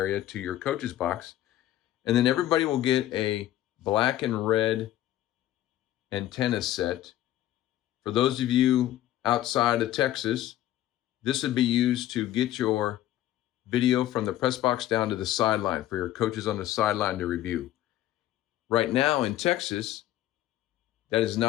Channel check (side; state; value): right; quieter; 13.5 dB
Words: to your coach's box. And then everybody will get a black and red antenna set. For those of you outside of Texas, this would be used to get your video from the press box down to the sideline for your coaches on the sideline to review. Right now in Texas, that is